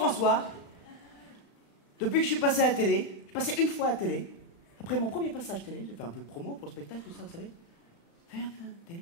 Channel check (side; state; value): right; late; 35 ms